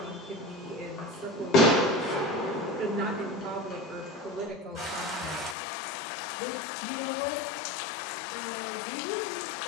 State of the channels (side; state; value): right; drops out; at 5.6 s